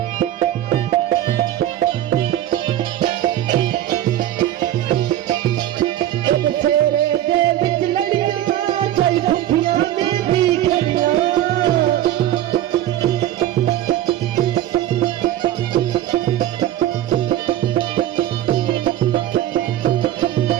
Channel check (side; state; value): left; quieter; 12.7 dB